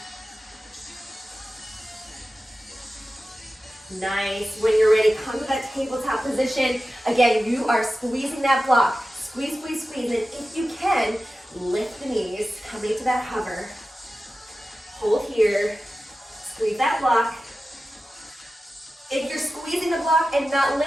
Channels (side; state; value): both; normal; correlation 0.94